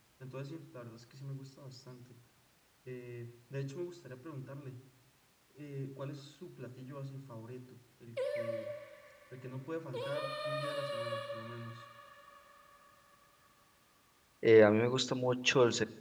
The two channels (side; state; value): both; identical; correlation 1.00